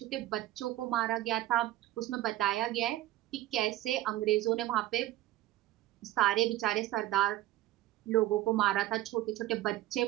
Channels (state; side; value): quieter; left; 14.9 dB